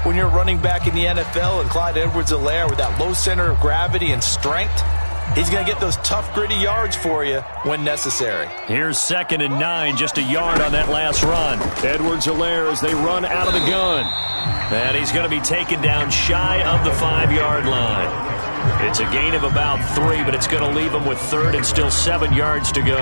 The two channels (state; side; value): inverted; both; correlation -1.00